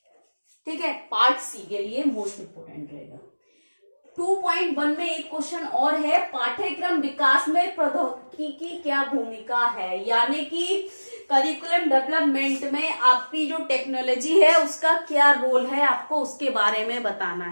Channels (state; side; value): inverted; both; correlation -1.00